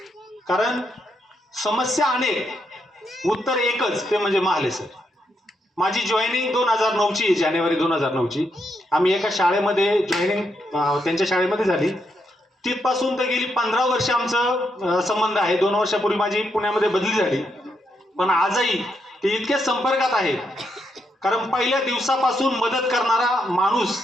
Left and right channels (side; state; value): both; normal; correlation 0.80